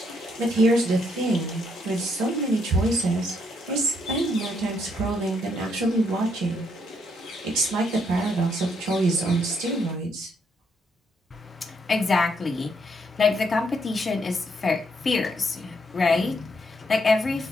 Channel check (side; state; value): both; normal; correlation 0.74